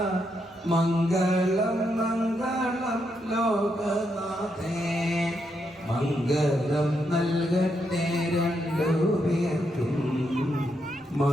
മംഗളം മംഗളം ലോകനാഥേ മംഗളം നൽകട്ടെ രണ്ടുപേർക്കും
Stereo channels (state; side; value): normal; both; correlation 0.80